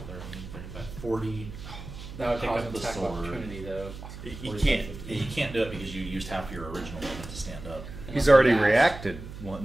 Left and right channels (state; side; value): noise; right; hum, 12 dB below the sound